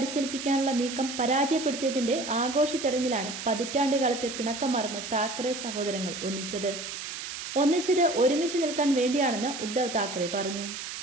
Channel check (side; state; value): right; noise; hiss, 8 dB below the sound